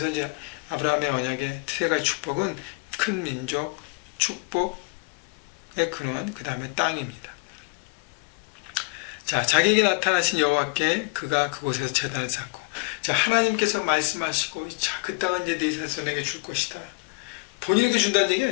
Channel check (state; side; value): quieter; right; 29.8 dB